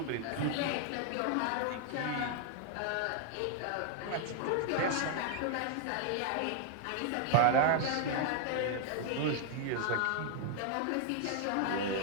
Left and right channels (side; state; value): both; different; correlation 0.00